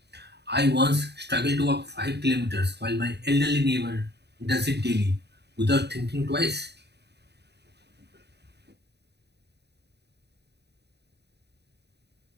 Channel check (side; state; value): left; late; 0.49 ms